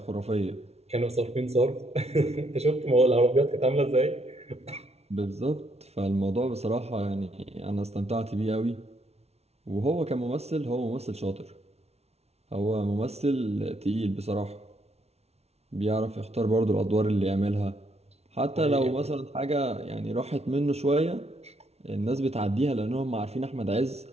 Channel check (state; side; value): late; left; 0.31 ms